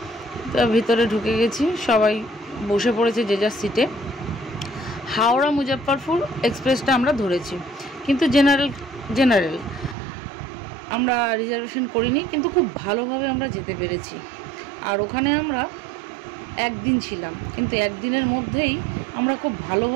তো ভিতরে ঢুকে গেছি, সবাই বসে পড়েছে যে যার সিটে। হাওড়া মুজফ্ফরপুর এক্সপ্রেসটা আমরা ধরেছি, কিন্তু জেনারেল আমরা রিজার্ভেশন করিনি, কিন্তু খুব ভালোভাবে আমরা যেতে পেরেছি। আর ওখানে আমরা একদিন ছিলাম, কিন্তু একদিনের মধ্যেই আমরা খুব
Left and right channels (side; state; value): left; drops out; at 10.0 s